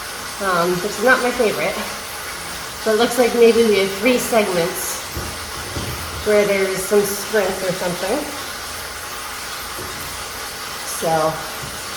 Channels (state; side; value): identical; both; correlation 1.00